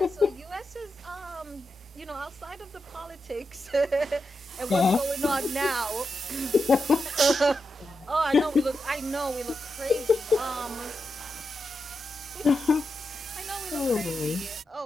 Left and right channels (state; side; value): normal; both; correlation 0.88